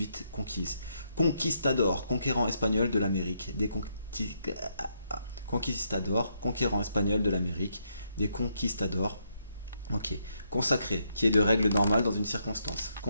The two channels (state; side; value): inverted; both; correlation -0.76